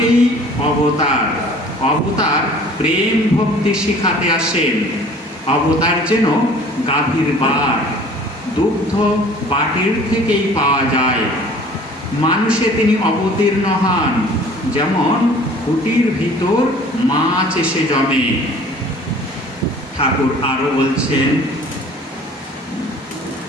অবতার। অবতার প্রেম ভক্তি শিখাতে আসেন, অবতার যেন গাভীর বার, দুগ্ধ বাটির থেকেই পাওয়া যায়। মানুষে তিনি অবতীর্ণ হন, যেমন কুটির ভিতর মাছ এসে জমে। ঠাকুর আরো বলছেন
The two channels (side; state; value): both; normal; correlation 0.49